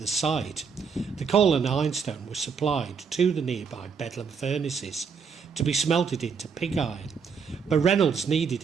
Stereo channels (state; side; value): quieter; left; 6.0 dB